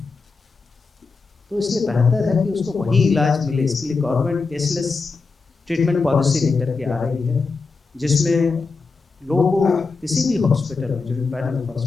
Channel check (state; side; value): quieter; right; 4.3 dB